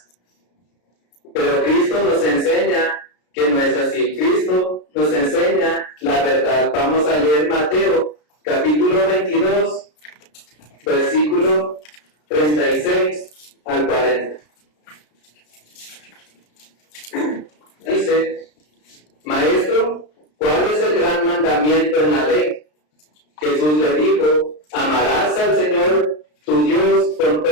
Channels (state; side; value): late; right; 33 ms